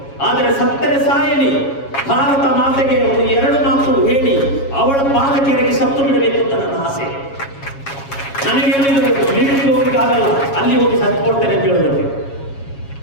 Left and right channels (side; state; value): right; late; 7.3 ms